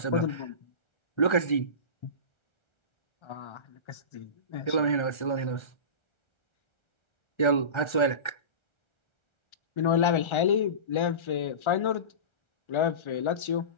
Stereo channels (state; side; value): late; right; 1.3 ms